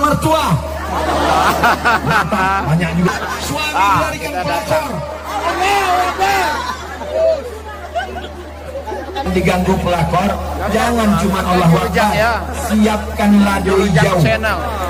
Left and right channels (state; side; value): identical; both; correlation 1.00